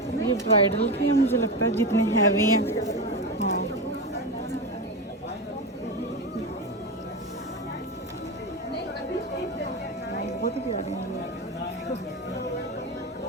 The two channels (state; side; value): normal; both; correlation 0.18